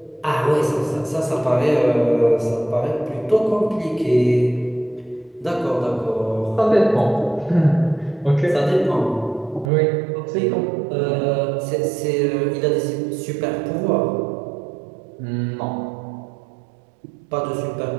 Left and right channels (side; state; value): left; drops out; at 9.7 s